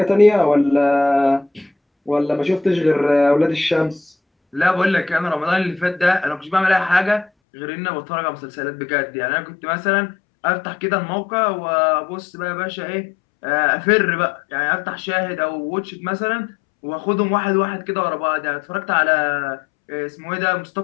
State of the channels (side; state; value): right; drops out; at 7.3 s